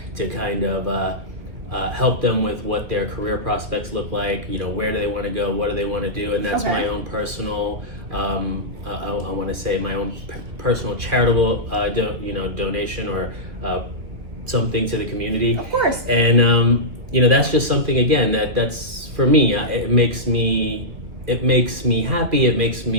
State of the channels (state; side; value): late; left; 2.3 ms